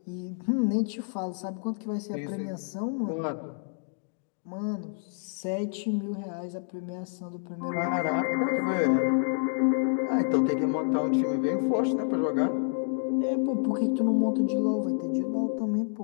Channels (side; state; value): right; silent; 59 dB below the other